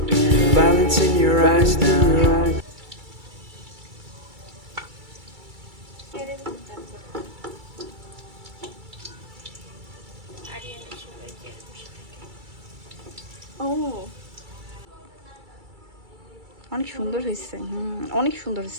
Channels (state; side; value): late; left; 2.3 ms